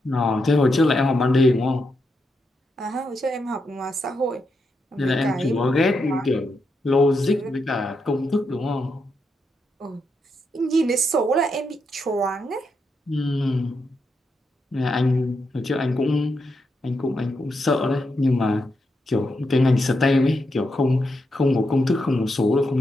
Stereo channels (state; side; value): normal; both; correlation 0.83